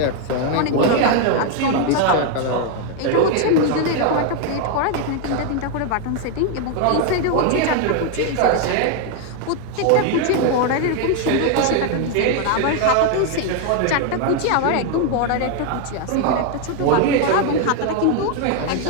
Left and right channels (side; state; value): both; different; correlation 0.01